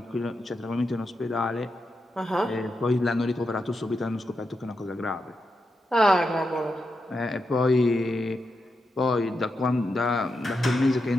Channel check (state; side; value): normal; both; correlation 0.86